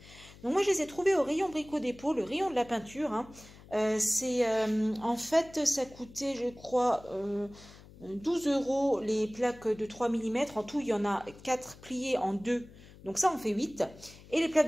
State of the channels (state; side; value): noise; left; hum, 21 dB below the sound